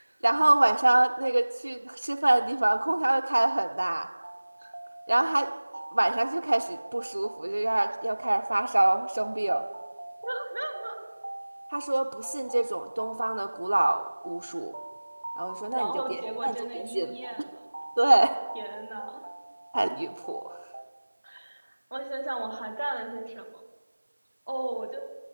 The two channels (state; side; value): inverted; both; correlation -1.00